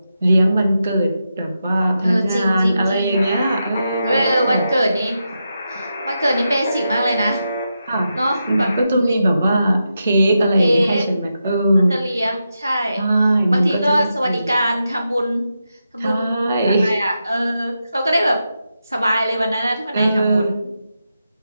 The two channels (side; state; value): both; inverted; correlation -0.87